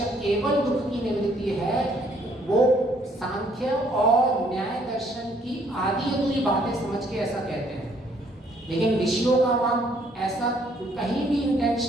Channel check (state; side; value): normal; both; correlation 0.65